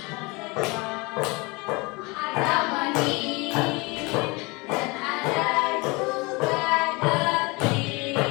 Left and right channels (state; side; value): quieter; right; 26.0 dB